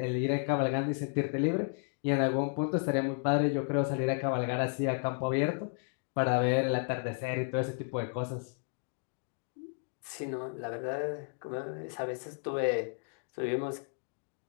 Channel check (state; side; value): silent; right; 55 dB below the other